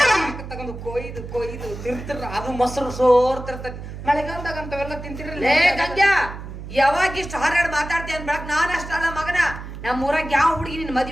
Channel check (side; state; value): right; noise; hum, 10 dB below the sound